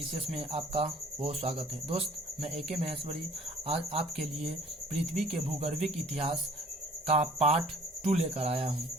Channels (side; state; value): both; normal; correlation 0.53